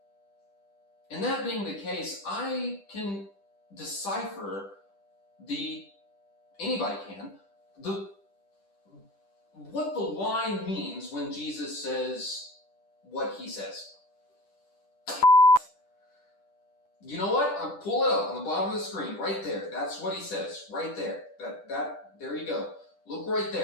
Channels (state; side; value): late; right; 10 ms